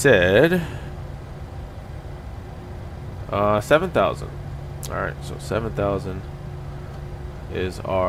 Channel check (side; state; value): both; identical; correlation 1.00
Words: 7,000. All right, so 7,000 is